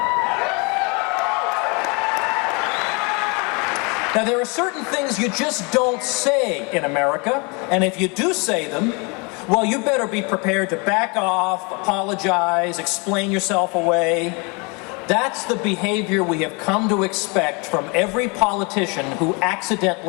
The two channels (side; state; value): right; quieter; 30.9 dB